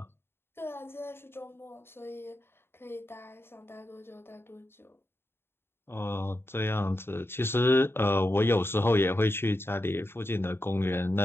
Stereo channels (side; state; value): right; late; 0.11 ms